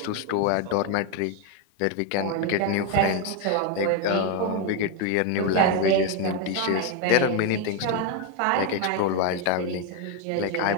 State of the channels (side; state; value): both; different; correlation 0.02